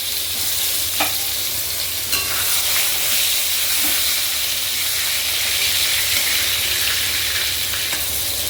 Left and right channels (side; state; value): both; normal; correlation 0.95